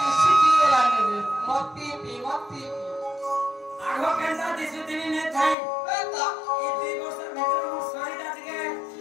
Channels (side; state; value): right; drops out; at 5.6 s